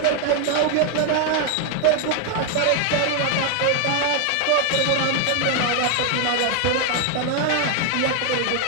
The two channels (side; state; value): both; different; correlation 0.01